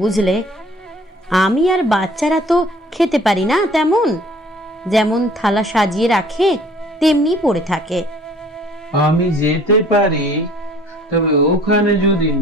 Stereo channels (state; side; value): normal; both; correlation 0.53